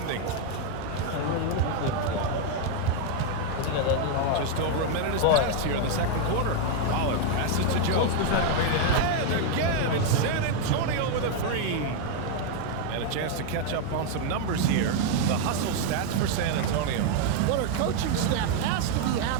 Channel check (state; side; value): different; both; correlation 0.00